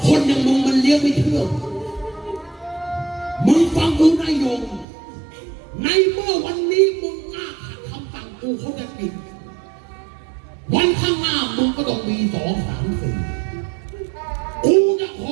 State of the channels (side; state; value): left; drops out; at 4.9 s